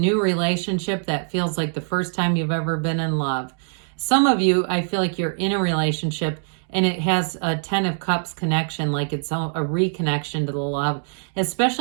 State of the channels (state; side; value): silent; left; 63 dB below the other